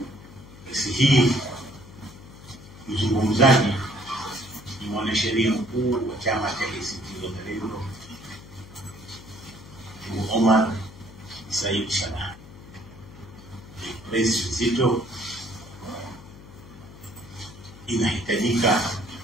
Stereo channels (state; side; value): noise; left; hum, 18 dB below the sound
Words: Press hii mzungumzaji ni mwanasheria mkuu wa chama cha ACT Wazalendo Omar Said Salah. Press nzito inahitajika